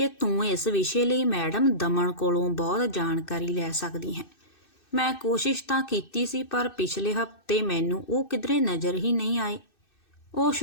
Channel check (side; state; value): right; late; 2.6 ms